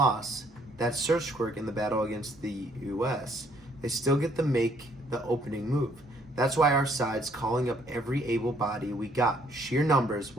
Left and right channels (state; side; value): normal; both; correlation 0.65